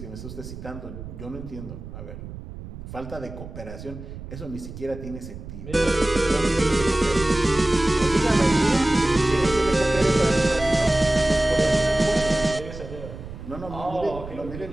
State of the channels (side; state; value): right; noise; rumble, 12 dB below the sound